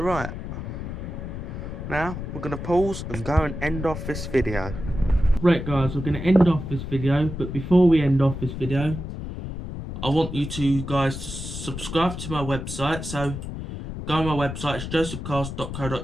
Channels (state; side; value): noise; left; rumble, 7 dB below the sound